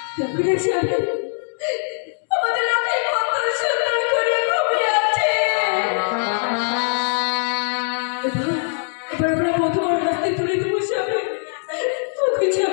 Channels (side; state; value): right; silent; digital silence